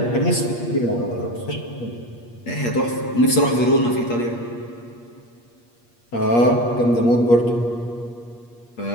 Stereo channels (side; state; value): right; late; 8.5 ms